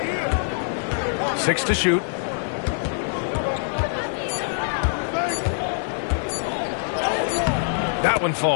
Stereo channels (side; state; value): right; silent; digital silence